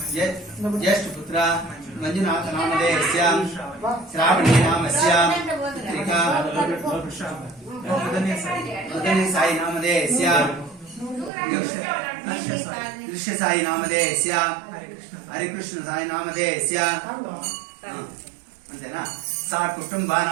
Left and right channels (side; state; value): left; drops out; at 11.3 s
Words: జ్యేష్ఠ పుత్ర మంజునాథ నామధేయస్య శ్రావణి నామస్య త్రికా मदनी साई नामधेयस्य दृश्य साई नामधेयस्य हरिकृष्ण साई नामधेयस्य अंतेना सा